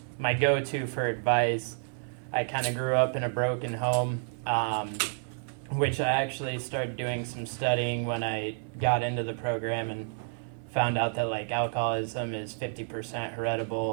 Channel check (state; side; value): silent; left; 58 dB below the other